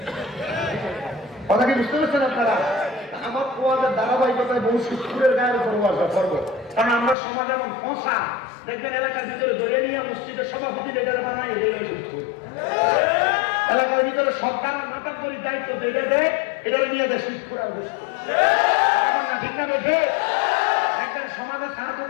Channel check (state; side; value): drops out; right; at 7.2 s